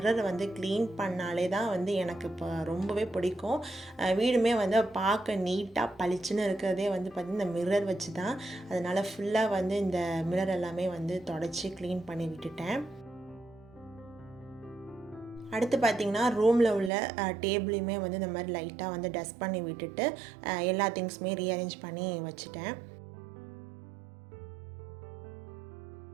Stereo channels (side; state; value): left; drops out; at 16.9 s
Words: வந்து க்ளீன் பண்ணாலே தான் வந்து எனக்கு இப்போ ரொம்பவே பிடிக்கும். வீடுமே வந்து பார்க்க நீட்டாக பளிச்சுன்னு இருக்கிறதே வந்து பார்த்திங்கன்னா இந்த மிரர் வச்சு தான். அதனால் ஃபுல்லாக வந்து இந்த மிரர் எல்லாமே வந்து தொடச்சி க்ளீன் பண்ணி விட்டுட்டேன். அடுத்து பார்த்திங்கன்னா ரூமில் உள்ள டேபிளையுமே வந்து இந்த மாதிரி லைட்டாக வந்து டஸ்ட் பண்ணி விட்டுட்டு எல்லா திங்ஸுமே ரீஅரேஞ்ச் பண்ணி வச்சுட்டேன்.